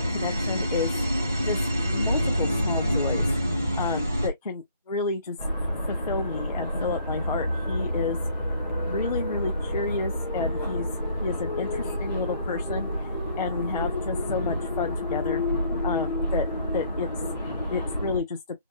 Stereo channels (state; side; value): inverted; both; correlation -0.62